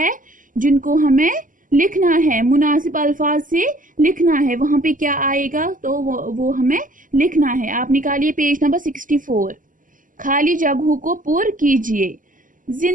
जिनको हमें लिखना है, मुनासिब अल्फाज से लिखना है। वहां पे क्या आएगा तो वो हमें लिखना है। आप निकालिए पेज नंबर 64। खाली जगहों को पूर्ण कीजिए।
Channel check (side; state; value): left; late; 0.38 ms